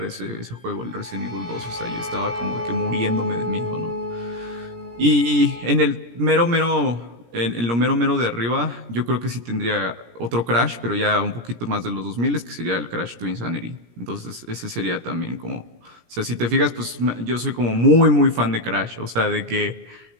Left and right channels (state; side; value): late; left; 17 ms